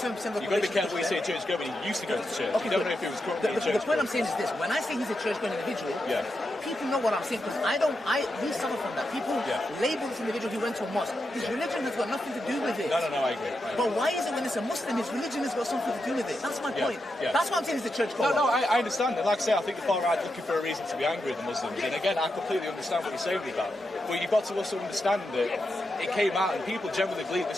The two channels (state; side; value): normal; both; correlation 0.86